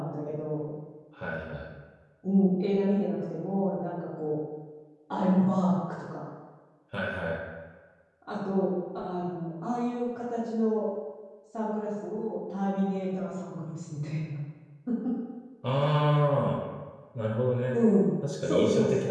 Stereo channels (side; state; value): both; identical; correlation 1.00